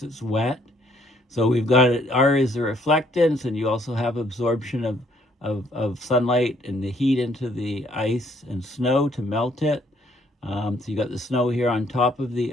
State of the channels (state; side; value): normal; both; correlation 0.66